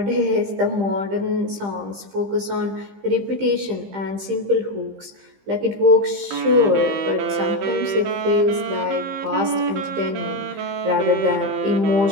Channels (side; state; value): left; late; 15 ms